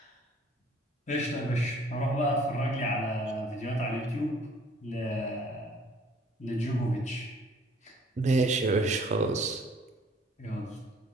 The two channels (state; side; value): normal; both; correlation 0.56